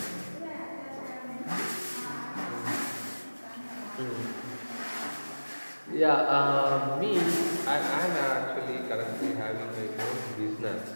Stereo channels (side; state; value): both; inverted; correlation -1.00